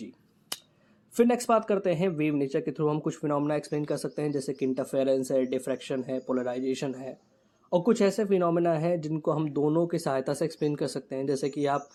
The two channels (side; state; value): both; identical; correlation 1.00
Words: फिर नेक्स्ट बात करते हैं वेव नेचर के थ्रू हम कुछ फिनोमेना एक्सप्लेन कर सकते हैं, जैसे कि इंटरफेरेंस है, डिफ्रैक्शन है, पोलराइजेशन है, और कुछ ऐसे फिनोमेना है जिनको हम दोनों की सहायता से एक्सप्लेन कर सकते हैं, जैसे कि आप